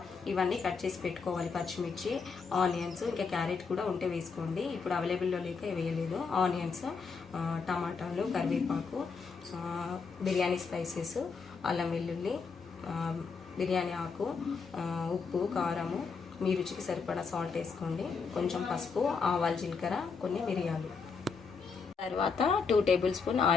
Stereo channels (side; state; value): right; quieter; 5.2 dB